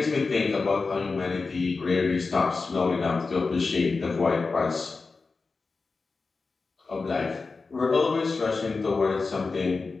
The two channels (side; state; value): right; quieter; 4.2 dB